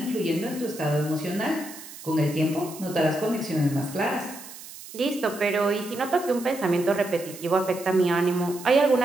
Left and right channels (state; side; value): noise; right; hiss, 15 dB below the sound